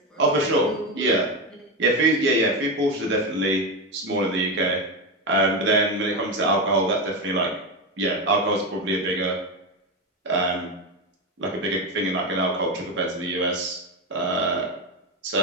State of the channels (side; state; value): both; normal; correlation 0.14